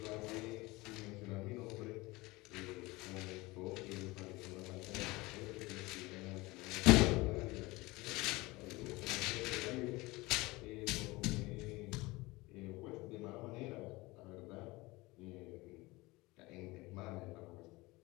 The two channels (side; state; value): right; quieter; 22.1 dB